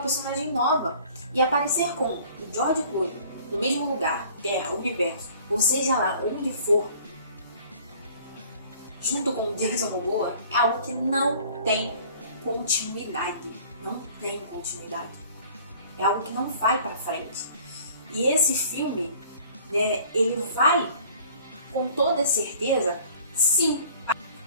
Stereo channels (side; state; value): both; inverted; correlation -0.51